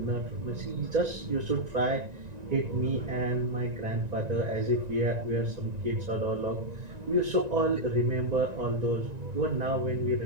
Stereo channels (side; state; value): left; late; 1.9 ms